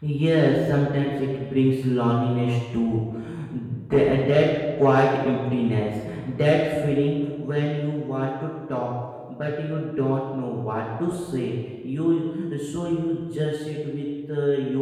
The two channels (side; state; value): both; identical; correlation 1.00